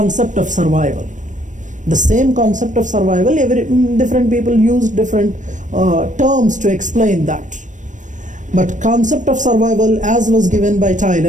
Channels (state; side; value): late; left; 0.37 ms